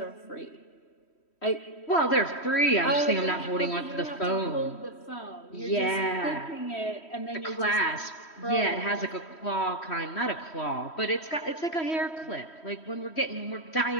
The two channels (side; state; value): right; late; 3.1 ms